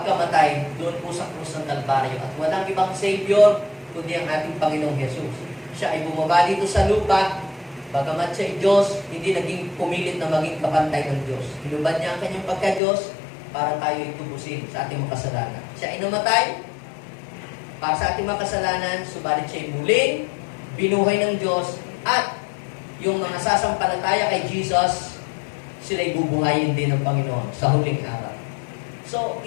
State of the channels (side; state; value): right; drops out; at 12.8 s